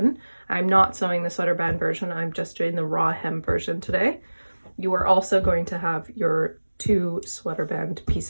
I'm not sewing the sweater band version, I'm just doing the raw hem version today. You are also going to have your 2 sweater band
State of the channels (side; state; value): both; inverted; correlation -1.00